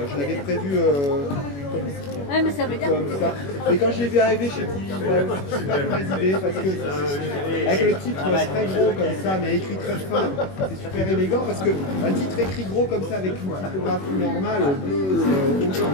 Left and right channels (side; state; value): right; late; 21 ms